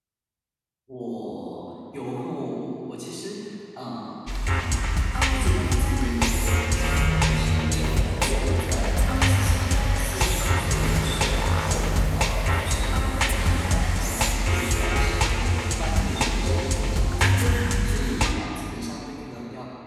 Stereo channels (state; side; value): identical; both; correlation 1.00